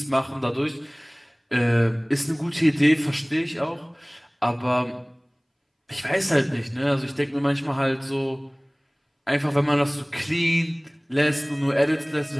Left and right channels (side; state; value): both; identical; correlation 1.00